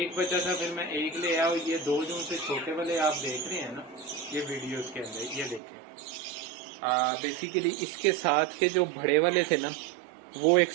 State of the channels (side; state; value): left; drops out; at 5.6 s